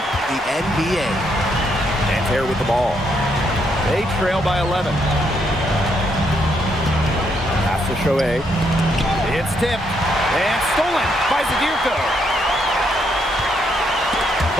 NBA. Nanterre with the ball. They trail by 11. Pass to Chauvet. It's tipped and stolen by Zadirko.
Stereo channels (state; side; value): normal; both; correlation 0.75